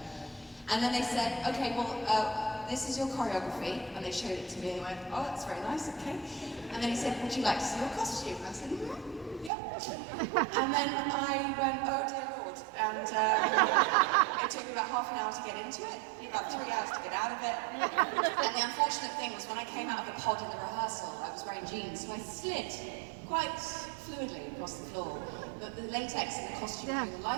And then they said, okay, well, this is your choreography, and they showed it to me, and I went, oh, that's very nice, okay. And then he said, would you like to see your costume? And I said, yep. And then I went, oh dear Lord, and it took me about half an hour to get into it, about 3 hours to get out of it. And the unfortunate thing was when I came out of the pod in the rehearsal, I was wearing jeans, so I slid quite fluidly across the floor. But the latex in the costume during the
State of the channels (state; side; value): drops out; left; at 9.5 s